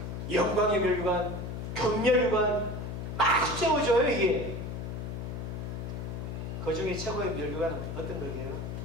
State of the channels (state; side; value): noise; left; hum, 6 dB below the sound